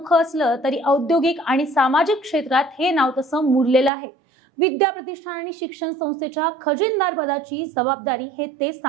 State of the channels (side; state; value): left; drops out; at 3.9 s